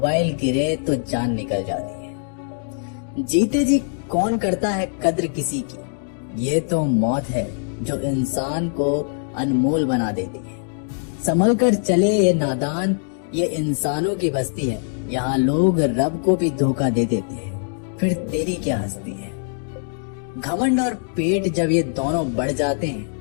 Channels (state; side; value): silent; right; digital silence